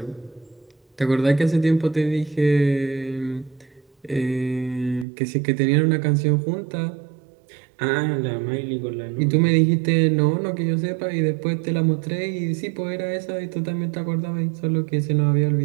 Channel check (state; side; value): drops out; left; at 5.1 s